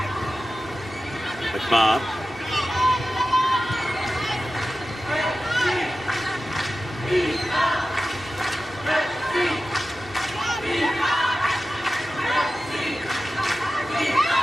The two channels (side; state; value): both; normal; correlation 0.94